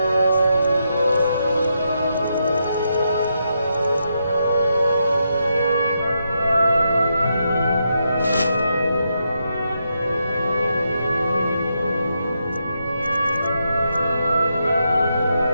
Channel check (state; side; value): inverted; both; correlation -0.82